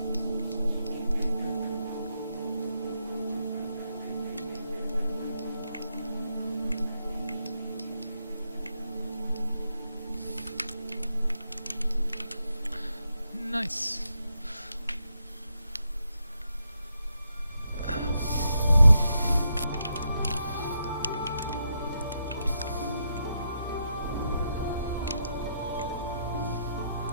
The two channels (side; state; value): both; inverted; correlation -0.81